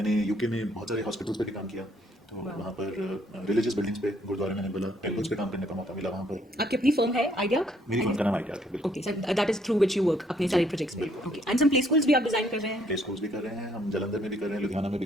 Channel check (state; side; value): normal; both; correlation 0.67